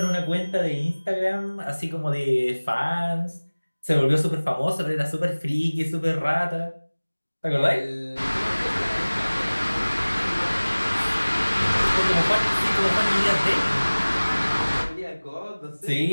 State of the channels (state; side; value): inverted; both; correlation -1.00